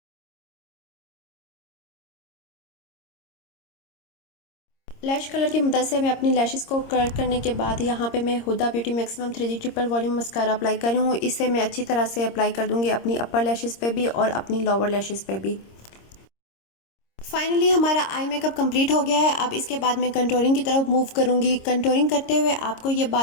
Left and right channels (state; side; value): late; right; 26 ms